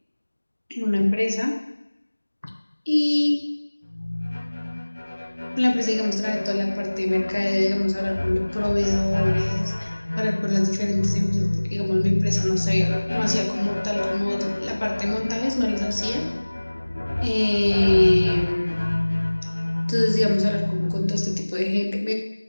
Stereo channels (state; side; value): inverted; both; correlation -1.00